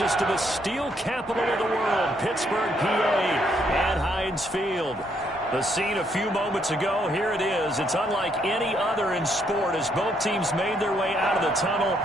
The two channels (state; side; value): normal; both; correlation 0.72